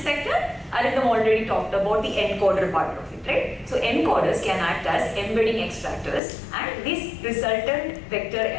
vector? Arindam already talked about the encoder part of it, right? So encoders can act as embedding extractors, and these resultant vector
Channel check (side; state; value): right; drops out; at 6.2 s